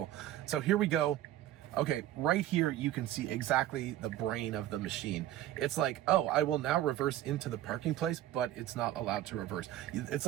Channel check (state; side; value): quieter; left; 13.4 dB